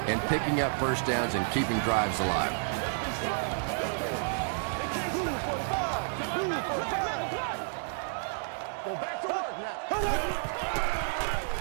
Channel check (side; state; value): left; silent; digital silence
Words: and picking up first downs and keeping drives alive.